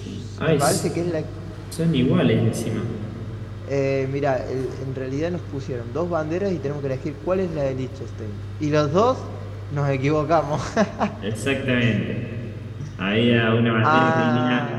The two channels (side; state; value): both; identical; correlation 1.00